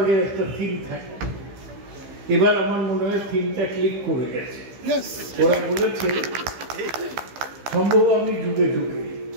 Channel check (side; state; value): left; late; 15 ms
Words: একটা থিম থাকে। এবার আমার মনে হয় থিমটা ক্লিক করে গেছে। ওরা বলেছে সম্ভব আমি যুগে যুগে।